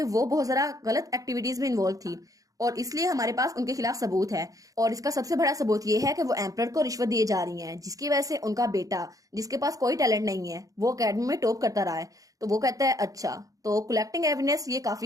वो बहुत ज्यादा गलत एक्टिविटीज में इन्वॉल्व थी, और इसलिए हमारे पास उनके खिलाफ सबूत है। और इसका सबसे बड़ा सबूत ये है कि वो एम्परर को रिश्वत दिए जा रही हैं, जिसकी वजह से उनका बेटा जिसके पास कोई टैलेंट नहीं है वो अकेडमी में टॉप करता रहा है। तो वो कहता है अच्छा तो कलेक्टिंग एविडेंस ये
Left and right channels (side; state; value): left; late; 0.17 ms